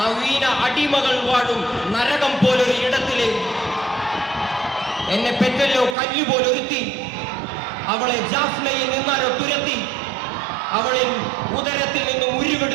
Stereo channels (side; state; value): left; drops out; at 6.0 s